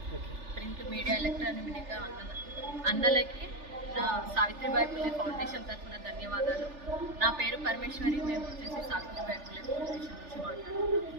ప్రింట్ మీడియా, ఎలక్ట్రానిక్ మీడియా అన్నలకి నా సావిత్రిబాయి పుల్లే ఫౌండేషన్ తరఫున ధన్యవాదాలు. నా పేరు పరమేశ్వరి. మేము వచ్చేసి సావిత్రిబాయి పుల్లే ఫౌండేషన్ నుంచి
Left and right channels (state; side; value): late; left; 3.4 ms